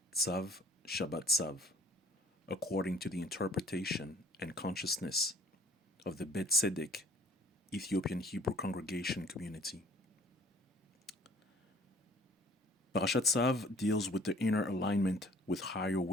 Tzav Shabbat Tzav, according to the interpretation and consciousness of the Beth Tzedek Ethiopian Hebrew Congregation community. Parashat Tzav deals with the inner alignment with higher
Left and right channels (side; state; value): both; normal; correlation 0.55